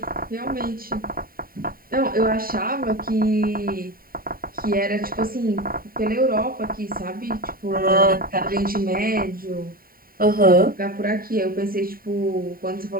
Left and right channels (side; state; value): left; late; 0.43 ms